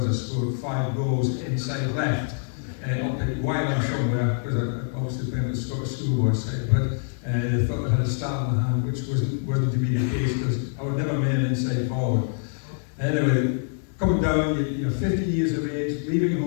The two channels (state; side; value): silent; right; digital silence